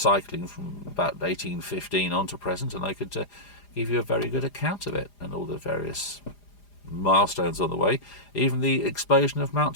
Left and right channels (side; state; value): right; late; 4.9 ms